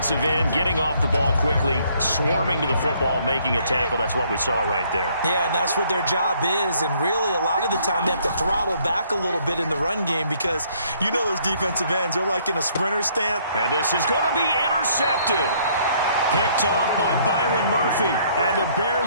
end, getting off the ball quickly, swarming to the football, making a tackle. That's what we saw right there. Yeah, and that's what their job is. And really, a lot of the time, they have to throttle back a little bit in the run game because you know those defensive ends, they're like in a sprinter stance. And this is going to be intercepted. Picked off by Byron Murphy. And the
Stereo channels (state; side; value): inverted; both; correlation -0.64